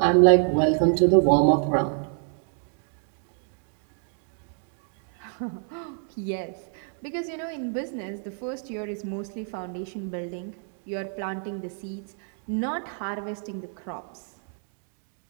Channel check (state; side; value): silent; left; 60 dB below the other